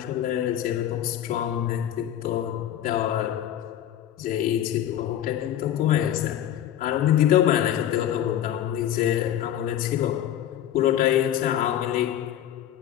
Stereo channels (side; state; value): right; quieter; 11.1 dB